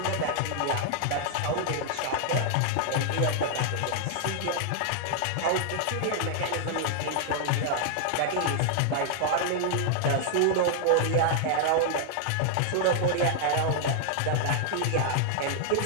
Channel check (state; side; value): different; both; correlation -0.01